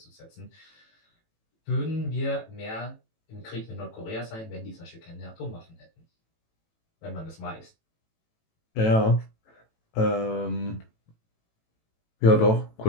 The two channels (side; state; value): right; late; 18 ms